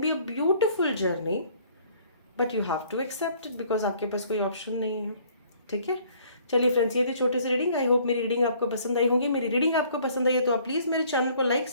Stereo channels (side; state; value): both; inverted; correlation -0.59